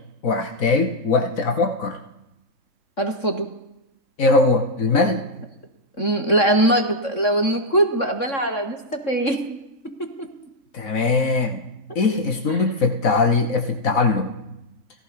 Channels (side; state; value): right; late; 3.6 ms